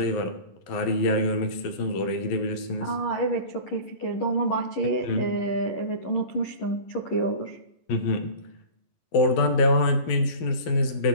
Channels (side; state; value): right; late; 11 ms